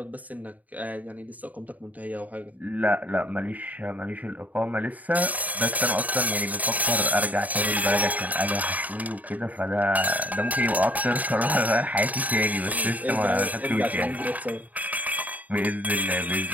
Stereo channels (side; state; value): left; late; 0.074 ms